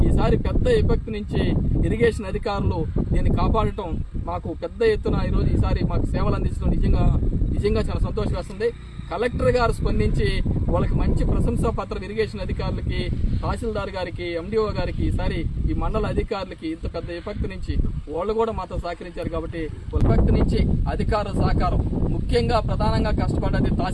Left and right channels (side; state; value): both; identical; correlation 1.00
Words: ఈసారి పెద్ద విపత్తు నుంచి ఇరిగేషన్ అధికారులు దీన్ని కాపాడటం మాకు పెద్ద ఎత్తున ఈసారి మాకు సేవలు అందించడం నిజంగా చాలా సంతోషం వేస్తుంది. కలెక్టర్ గారు స్పందించి వాళ్ళకి మంచి ప్రశంసా పత్రం ఇరిగేషన్ అధికారులకి, తహసీల్దార్ గారికి, ఎండిఓ గారికి, ఈసారి ఈ మండల అధికారులకి ఇంత పెద్ద విపత్తు నుంచి వాళ్ళు కూడా మాతో సహకరించారు. కాబట్టి విపత్తు నుంచి అధికారుల సహకారం, ముఖ్యంగా ప్రధానంగా కష్టపడ్డది